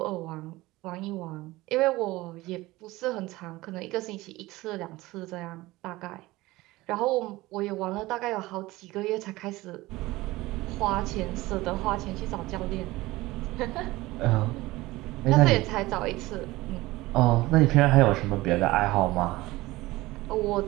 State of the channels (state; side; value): quieter; left; 19.2 dB